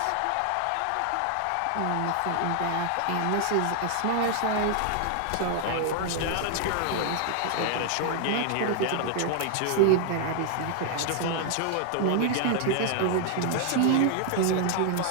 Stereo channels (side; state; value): both; different; correlation 0.00